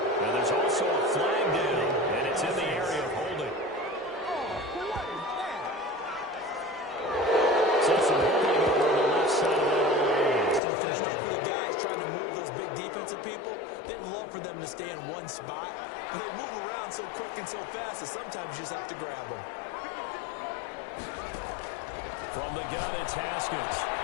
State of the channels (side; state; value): right; drops out; at 10.6 s